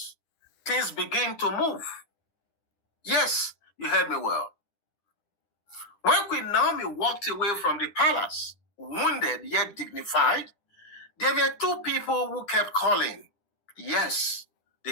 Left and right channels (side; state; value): right; late; 10 ms